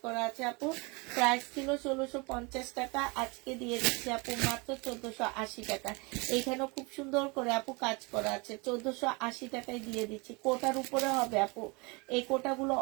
করা আছে আপু। প্রাইস ছিল 1650 টাকা, আজকে দিয়ে দিচ্ছি আপু মাত্র 1480 টাকা। এখানেও খুব সুন্দর করে আপু কাজ করা আছে, 1480 টাকায় দিয়ে দিচ্ছি। কোটার উপরে হবে আপু, এই কোটাগুলো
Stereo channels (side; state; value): left; quieter; 28.5 dB